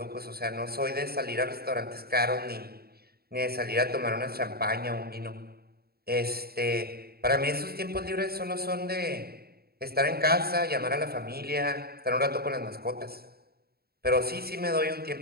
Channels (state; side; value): late; left; 0.45 ms